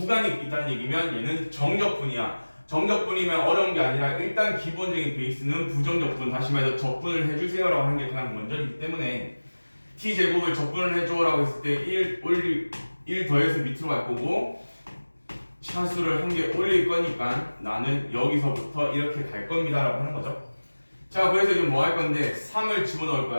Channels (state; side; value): inverted; both; correlation -1.00